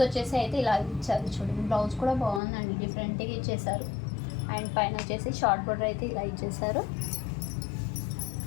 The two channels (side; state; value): right; drops out; at 2.4 s